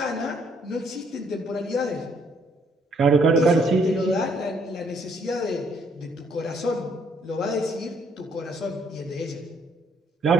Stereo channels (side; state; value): both; normal; correlation 0.67